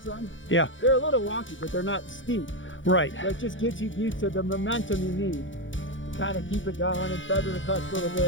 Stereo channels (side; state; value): right; late; 0.56 ms